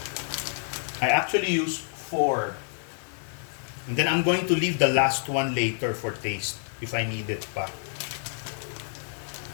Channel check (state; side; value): silent; right; digital silence